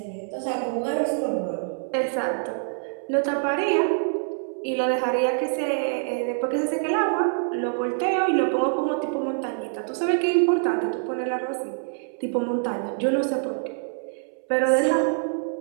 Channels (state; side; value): silent; left; 62 dB below the other